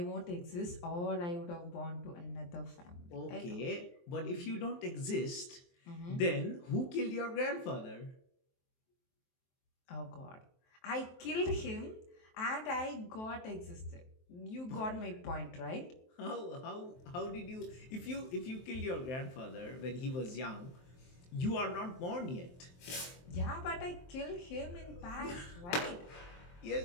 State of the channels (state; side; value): late; right; 23 ms